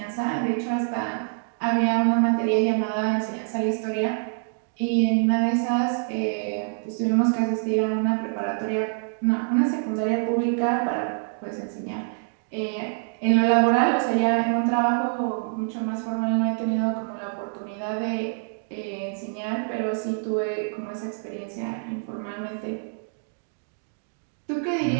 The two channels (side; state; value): left; silent; digital silence